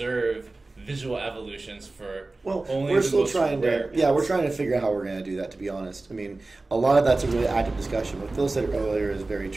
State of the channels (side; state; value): left; quieter; 3.2 dB